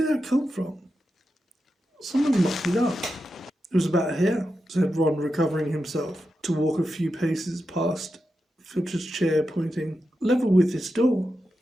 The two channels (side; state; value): both; normal; correlation 0.89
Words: that come from? Someone mopped it up." "It was about here," said Ron, recovering himself to walk a few paces past Filch's chair, pointing. "Level with this door."